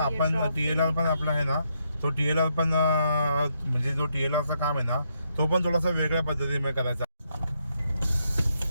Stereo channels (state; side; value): inverted; both; correlation -0.78